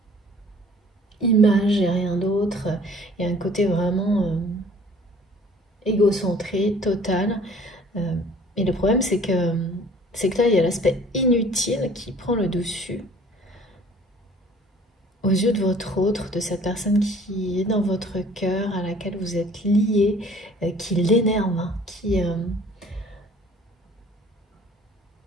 image et rien d'autre. Il y a un côté vraiment égocentré, total. Et le problème, c'est que là, il y a l'aspect inutile qui prend le dessus aux yeux de votre autre, de cette personne qui est dans votre cœur, à laquelle vous êtes lié, qui l'énerve, hein,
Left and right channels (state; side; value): normal; both; correlation 0.52